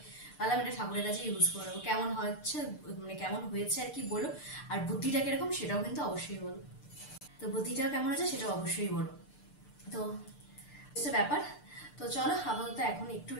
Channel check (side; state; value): right; late; 6.7 ms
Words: ভাবলাম এটা ঠাকুরের কাছে ইউজ করে নেবো। কেমন হচ্ছে মানে কেমন হয়েছে আর কি বলো, আর বুদ্ধিটা কিরকম সেটাও কিন্তু অবশ্যই বলো। তো বুদ্ধিটাও কেমন আছে সেটা অবশ্যই বলো। তো ব্যাপার, তো চলো আপাতত এখন একটু